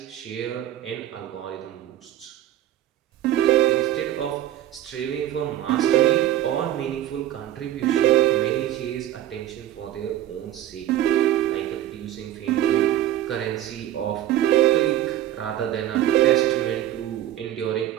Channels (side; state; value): left; quieter; 12.8 dB